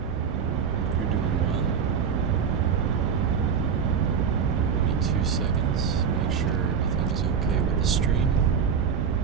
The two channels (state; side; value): quieter; left; 6.9 dB